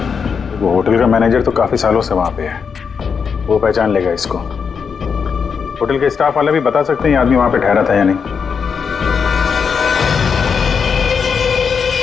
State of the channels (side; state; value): right; quieter; 6.2 dB